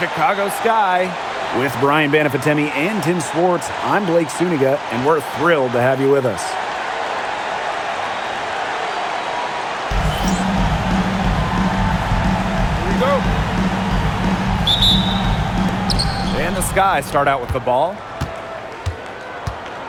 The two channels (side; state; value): both; identical; correlation 1.00